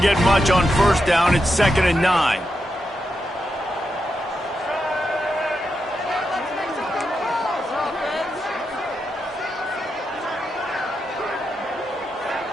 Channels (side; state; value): both; normal; correlation 0.86